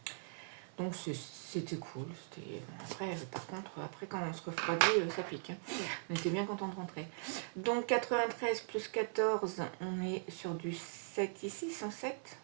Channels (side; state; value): left; silent; 51 dB below the other